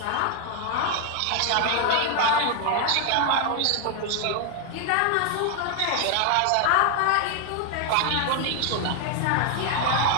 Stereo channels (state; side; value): different; both; correlation 0.01